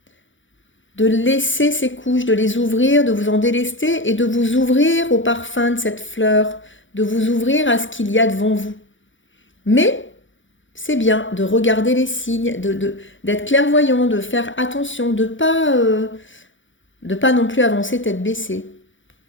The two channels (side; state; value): right; late; 0.56 ms